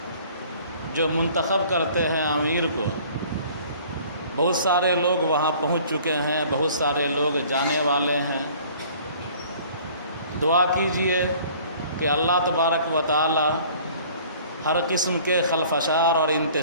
جو منتخب کرتے ہیں امیر کو، بہت سارے لوگ وہاں پہنچ چکے ہیں، بہت سارے لوگ جانے والے ہیں۔ دعا کیجئے کہ اللہ تبارک و تعالی ہر قسم کے خلفشار اور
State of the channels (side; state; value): both; inverted; correlation -0.51